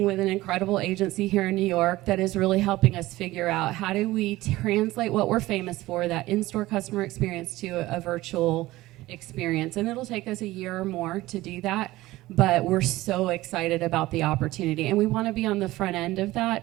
with an incredible agency here in New York that is really helping us figure out how do we translate what we're famous for, that in-store customer experience, to a virtual experience. And it'll take us a year or more to do that. But we're so excited about the opportunity, and we want to be on the front end of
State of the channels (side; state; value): left; quieter; 17.8 dB